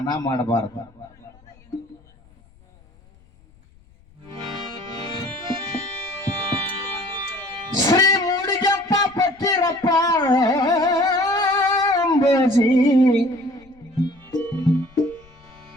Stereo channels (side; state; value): left; noise; rumble, 29 dB below the sound